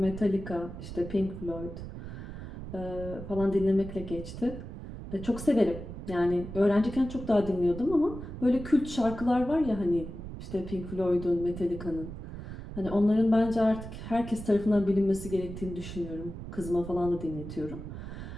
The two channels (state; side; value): noise; right; rumble, 10 dB below the sound